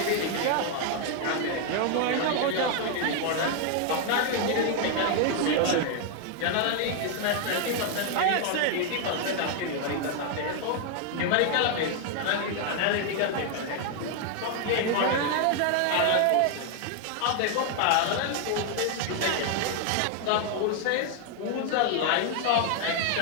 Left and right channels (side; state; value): both; different; correlation 0.00